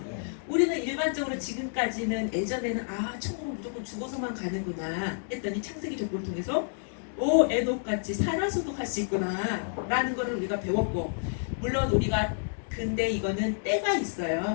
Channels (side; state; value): right; silent; digital silence